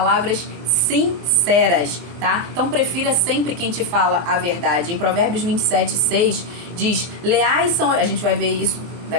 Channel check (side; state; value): left; late; 23 ms